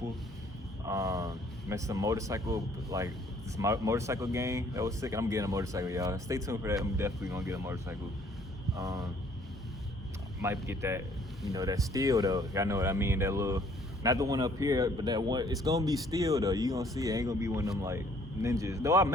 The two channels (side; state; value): both; normal; correlation 0.60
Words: Met some motorcycle, this motorcycle gang that was sick. I'm getting a motorcycle, y'all. Stay tuned for that. I'm definitely gonna get a motorcycle. Might get that, that steel though. Y'all know what I mean? That little, not the one up here, but that one. It's gonna be steel though. You gonna see it. Ain't gonna be one of them ninjas. Though I